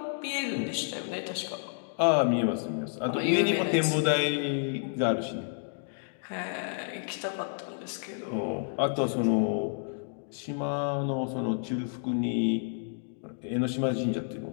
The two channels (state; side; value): silent; right; digital silence